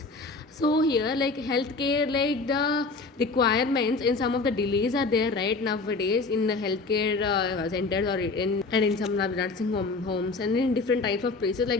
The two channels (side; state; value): right; quieter; 3.8 dB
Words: So here, like healthcare, like the requirements in some of the delays are there right nowadays in the healthcare centers or in some nursing homes and in different types of places.